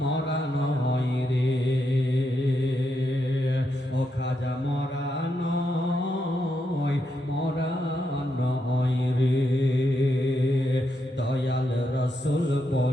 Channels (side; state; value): both; normal; correlation 0.82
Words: নয় রে। ও খাজা মরা নয় রে। দয়াল রসুল